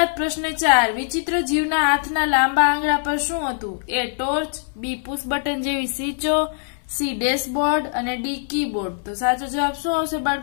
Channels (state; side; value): silent; right; 61 dB below the other